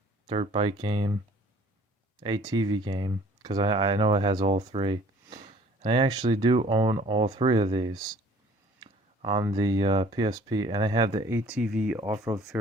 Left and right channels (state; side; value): normal; both; correlation 0.54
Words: dirt bike game, ATV game, because I know it has all 3. And I actually do own all 3 of these on the PSP, and I have the ATV Off-Road